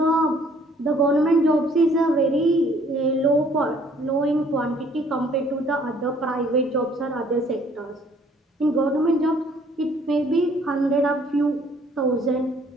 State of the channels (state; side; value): normal; both; correlation 0.60